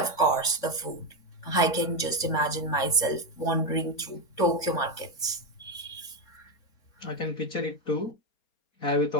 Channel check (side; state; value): right; late; 4.3 ms